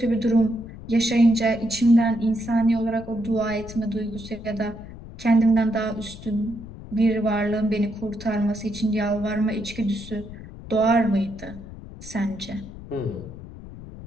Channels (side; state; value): left; noise; rumble, 14 dB below the sound